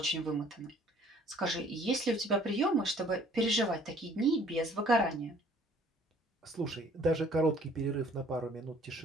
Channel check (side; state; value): both; normal; correlation 0.56